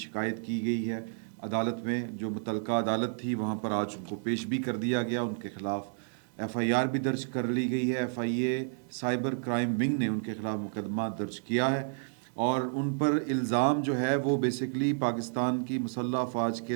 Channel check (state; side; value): silent; left; digital silence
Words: کی گئی ہے عدالت میں، جو متعلقہ عدالت تھی وہاں پر آج ان کو پیش بھی کر دیا گیا. ان کے خلاف ایف آئی آر بھی درج کر لی گئی ہے. F I A cyber crime wing نے ان کے خلاف مقدمہ درج کیا ہے اور ان پر الزام جو ہے وہ بیسیکلی پاکستان کی مسلح افواج